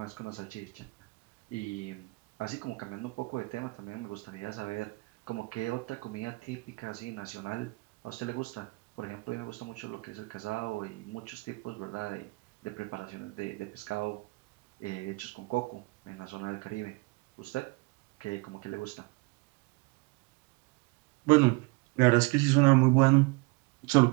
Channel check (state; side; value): quieter; left; 27.0 dB